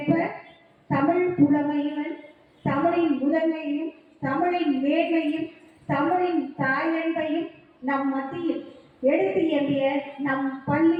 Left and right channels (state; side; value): identical; both; correlation 1.00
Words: தமிழ் புலமையுடன் தமிழின் முதன்மையும் தமிழின் மேன்மையும் தமிழின் தாயன்பையும் நம் மத்தியில் எடுத்து எம்பிய நம்